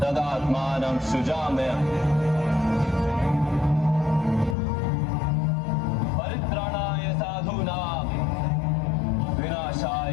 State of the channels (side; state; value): right; drops out; at 4.5 s